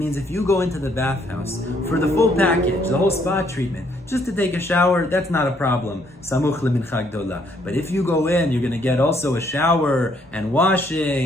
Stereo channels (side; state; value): both; normal; correlation 0.68